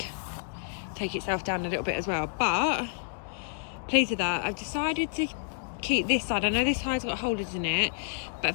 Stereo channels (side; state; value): right; silent; digital silence